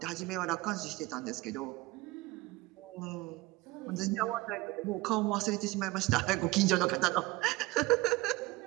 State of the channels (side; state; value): left; quieter; 20.5 dB